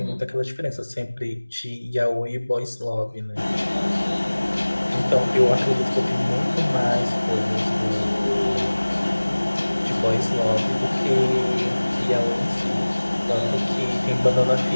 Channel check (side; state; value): both; inverted; correlation -1.00